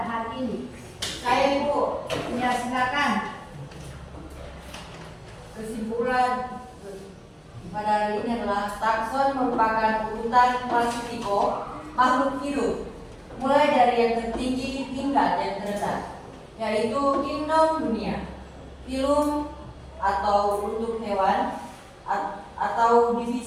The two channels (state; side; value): identical; both; correlation 1.00